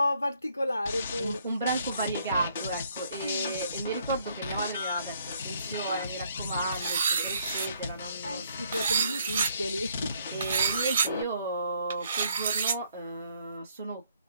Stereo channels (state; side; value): inverted; both; correlation -0.68